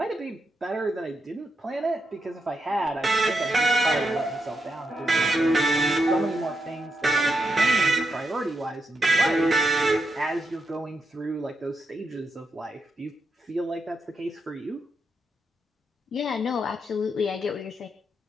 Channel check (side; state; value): both; normal; correlation 0.83